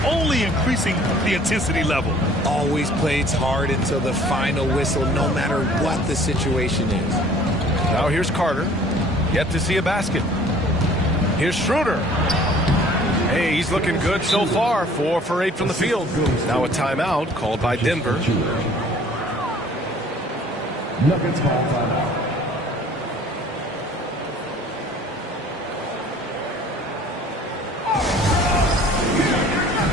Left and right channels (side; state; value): both; normal; correlation 0.52